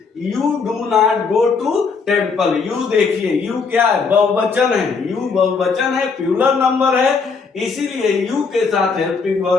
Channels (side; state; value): right; quieter; 5.0 dB